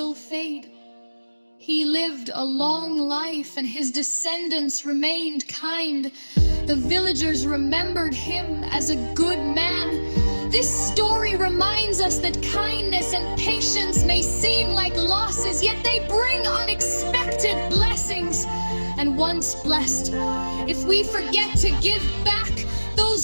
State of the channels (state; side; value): inverted; both; correlation -1.00